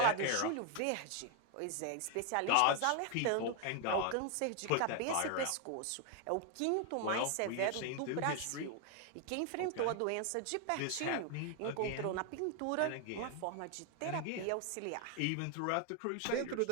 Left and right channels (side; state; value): both; different; correlation 0.00